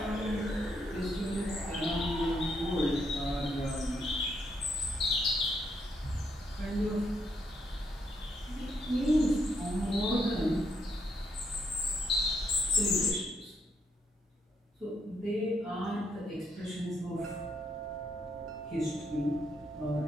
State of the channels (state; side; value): normal; both; correlation 0.75